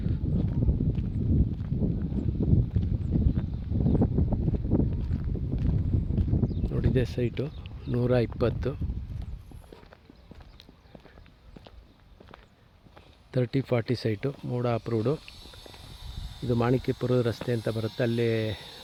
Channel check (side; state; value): both; identical; correlation 1.00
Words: ನೋಡಿದೆ ಸೈಟು 120 30-40 ಸೈಟು, ಮೂಡ ಅಪ್ರೂವ್ಡು. ಇದು ಮಾಣಿಕ್ಯಪುರದ ರಸ್ತೆ ಅಂತ ಬರುತ್ತೆ, ಅಲ್ಲೇ